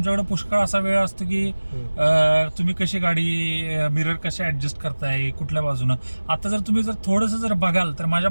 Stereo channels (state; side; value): inverted; both; correlation -1.00